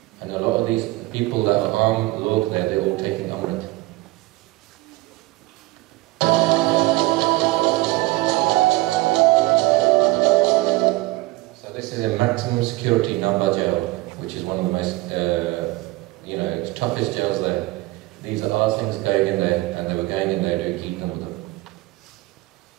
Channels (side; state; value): left; quieter; 20.2 dB